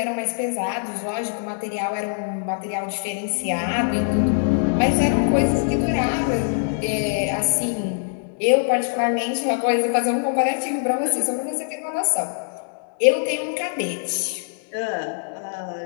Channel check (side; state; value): right; silent; digital silence